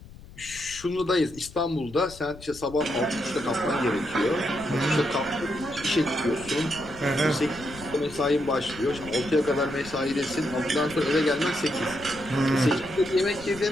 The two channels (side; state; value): left; noise; rumble, 18 dB below the sound